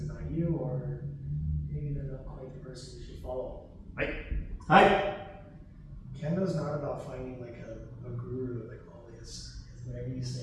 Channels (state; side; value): identical; both; correlation 1.00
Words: about you, or maybe they're not quite the person you should follow. Hi. Kendo's not about finding like a guru, like, oh, it's whatever you